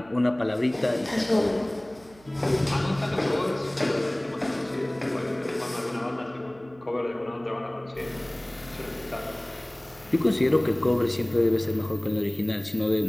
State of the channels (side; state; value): right; noise; hum, 26 dB below the sound